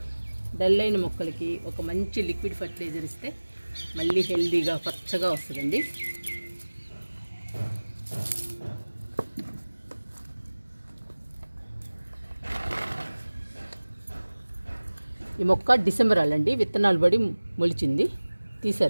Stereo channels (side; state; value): both; inverted; correlation -1.00